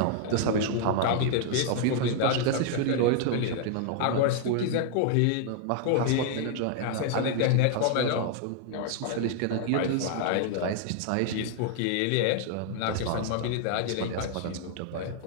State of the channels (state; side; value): different; both; correlation 0.00